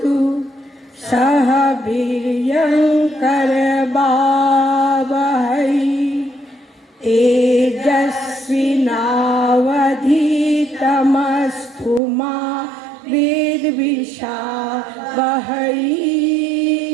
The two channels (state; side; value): drops out; left; at 12.0 s